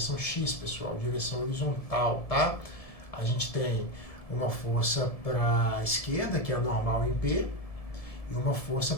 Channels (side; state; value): right; late; 1.7 ms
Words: x, pessoal, direção horizontal, tá? A gente tem uma força para a esquerda, que é a normal em P, e uma força